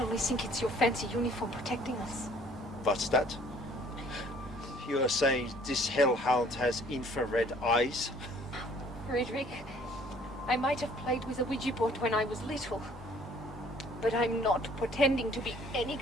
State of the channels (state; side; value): normal; both; correlation 0.57